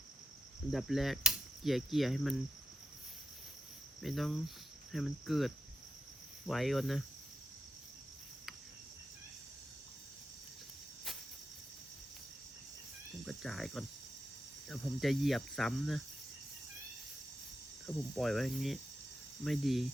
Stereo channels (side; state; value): both; normal; correlation 0.87